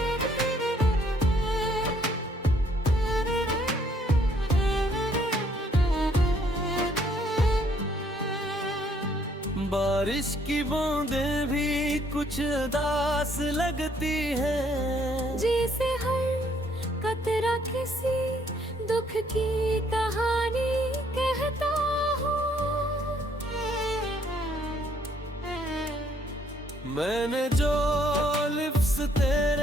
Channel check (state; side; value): normal; both; correlation 0.66